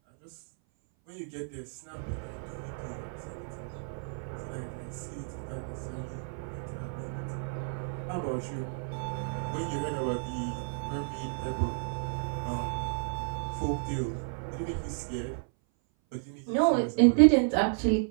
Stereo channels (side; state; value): left; silent; 57 dB below the other